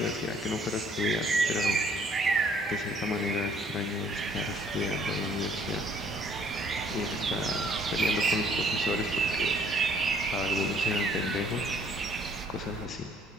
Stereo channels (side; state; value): both; normal; correlation 0.61